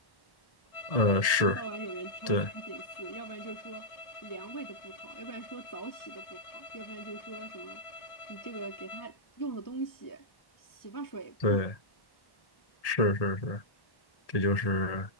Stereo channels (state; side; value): late; right; 1.7 ms